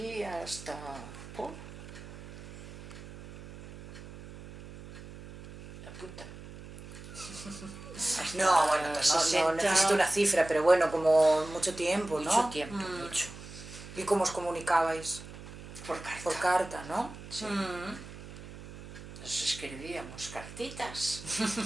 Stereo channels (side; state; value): right; noise; hum, 14 dB below the sound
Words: hasta... Apunta. No, bueno, no necesito una cifra, pero bueno, como mucho tiempo, ¿no? Mucho tiempo, mucho. ¿Y cómo os comunicabais? Por carta. Por carta, ¿no? Sí. Nos escribíamos cartitas.